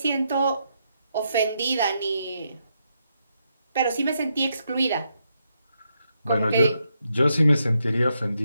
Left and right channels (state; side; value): inverted; both; correlation -0.81